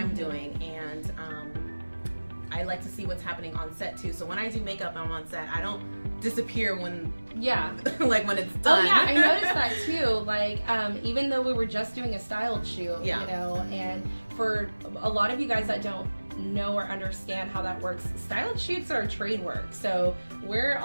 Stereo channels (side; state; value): both; inverted; correlation -1.00